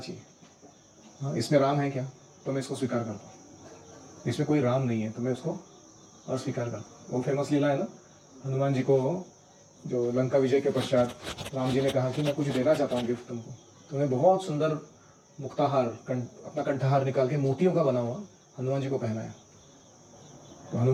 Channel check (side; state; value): both; identical; correlation 1.00